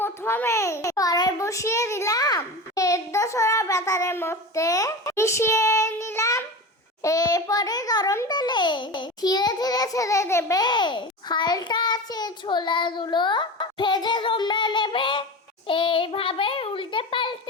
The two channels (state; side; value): normal; both; correlation 0.28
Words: কড়াই বসিয়ে দিলাম, সেদ্ধ ছোলা ব্যাটারের মধ্যে মিশিয়ে নিলাম। এরপরে গরম তেলে ধীরে ধীরে ছেড়ে দেবে। হালকা আছে ছোলাগুলো ভেজে তোমরা নেবে। এইভাবে উল্টে